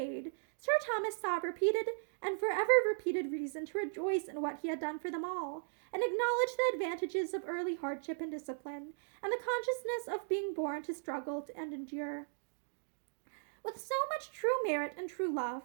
Sir Thomas saw repeated and forever repeated reason to rejoice in what he had done for them all, and acknowledge the advantages of early hardship and discipline, and the consciousness of being born to struggle and endure. With so much true merit and true love,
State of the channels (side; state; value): left; silent; digital silence